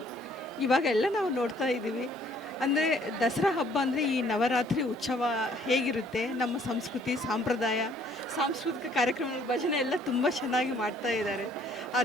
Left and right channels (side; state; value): both; normal; correlation 0.61